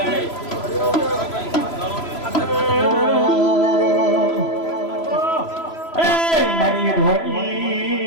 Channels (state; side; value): late; right; 3.0 ms